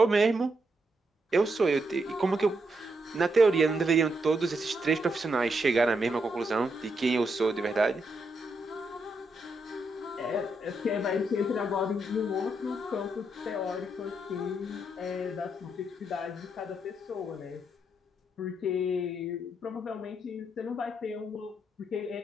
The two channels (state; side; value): normal; both; correlation 0.80